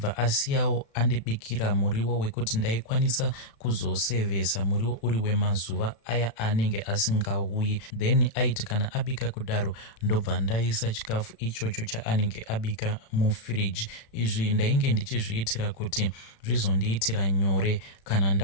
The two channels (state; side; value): late; right; 36 ms